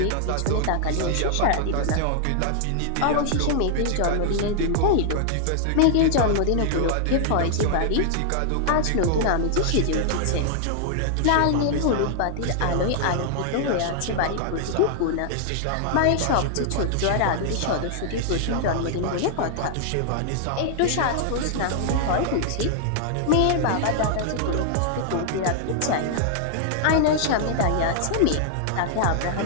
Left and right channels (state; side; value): different; both; correlation -0.01